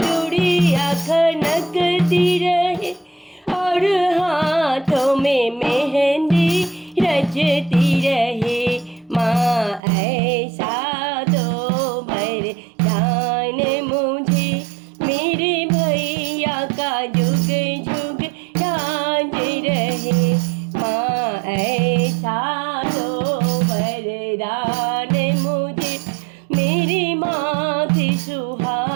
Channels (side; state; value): left; drops out; at 9.8 s